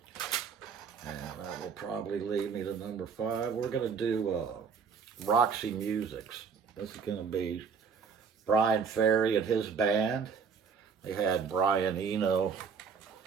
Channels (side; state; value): left; quieter; 5.9 dB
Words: And that will probably lead me to #5. We're going to do Roxy Musics. This is going to be Brian Ferry and his band. They had Brian Eno